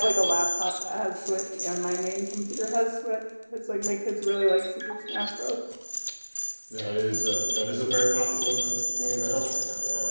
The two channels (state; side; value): inverted; both; correlation -1.00